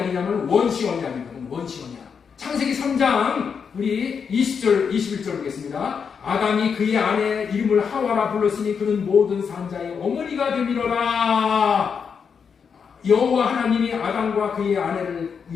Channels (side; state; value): right; quieter; 6.4 dB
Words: 원시 언약이거든. 원시 언약. 창세기 3장 우리 20절 21절 보겠습니다. 아담이 그의 아내 이름을 하와라 불렀으니 그는 모든 산자의 어머니가 되밀어라. 여호와 하나님이 아담과 그의 아내를